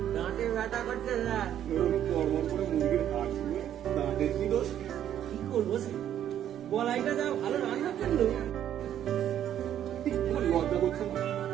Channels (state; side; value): quieter; left; 10.6 dB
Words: দাঁতে ব্যথা করছে না কর্মর করে মুরগির হাট শুনে দাঁতের কি দোষ? কি করবো সে বলাইটা যা ভালো রান্না করলো তোমার লজ্জা করছে না?